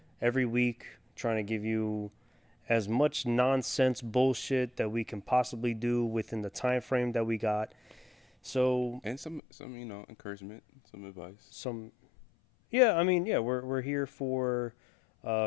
every week trying to give you as much nonsense bullshit that we can possibly do within the time frame that we got. So And some encouragement, some advice. We're here for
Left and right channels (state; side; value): drops out; right; at 9.4 s